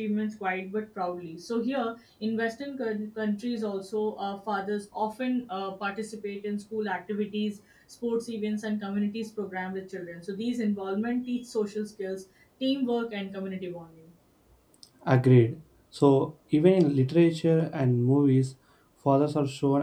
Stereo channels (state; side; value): identical; both; correlation 1.00